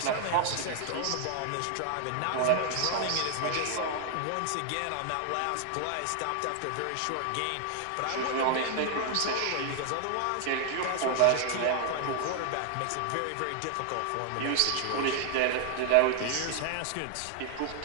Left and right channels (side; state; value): both; different; correlation 0.00